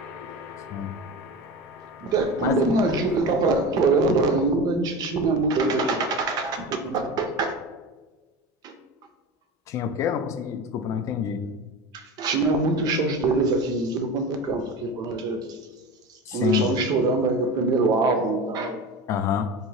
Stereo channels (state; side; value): normal; both; correlation 0.29